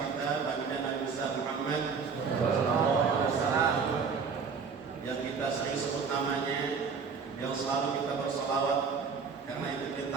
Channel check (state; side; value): quieter; left; 5.6 dB